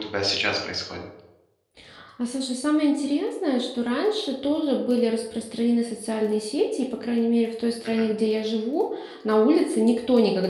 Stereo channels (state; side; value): identical; both; correlation 1.00